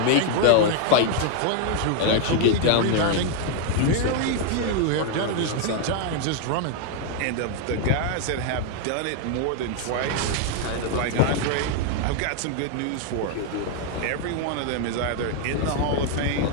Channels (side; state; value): both; different; correlation 0.00